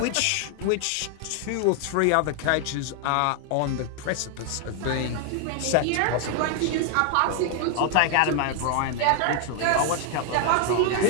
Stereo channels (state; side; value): different; both; correlation 0.00